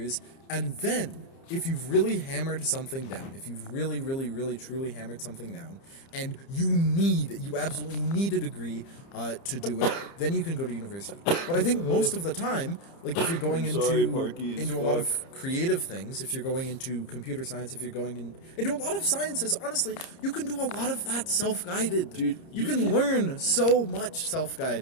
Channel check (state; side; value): late; right; 30 ms